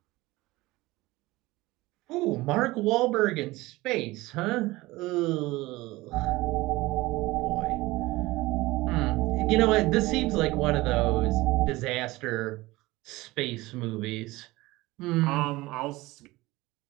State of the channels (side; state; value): left; quieter; 20.0 dB